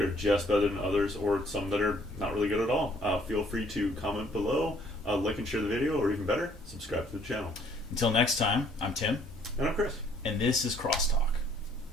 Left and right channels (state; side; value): normal; both; correlation 0.62